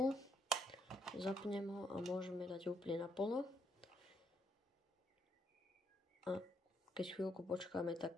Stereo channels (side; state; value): both; normal; correlation 0.74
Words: Zapnem ho a môžeme dať úplne naplno. A keď chvíľku počkáme,